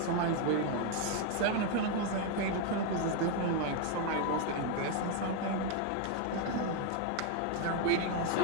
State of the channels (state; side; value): different; both; correlation 0.01